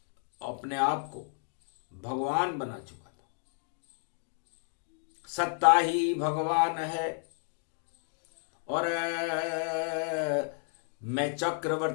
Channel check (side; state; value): right; silent; 56 dB below the other